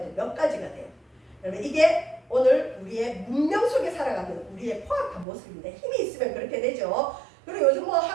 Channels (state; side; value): drops out; left; at 5.2 s